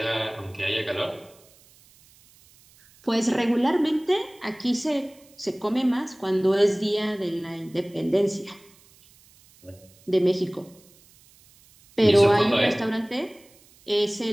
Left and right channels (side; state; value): right; noise; hiss, 28 dB below the sound